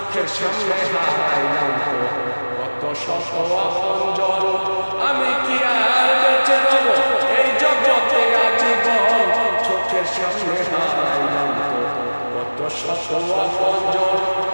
সামনে হারাইলাম কত শত আপনজন। আমি কি আর বেঁচে রব এই জগতে আজীবন। চোখের সামনে হারাইলাম কত শত আপনজন।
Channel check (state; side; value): inverted; both; correlation -1.00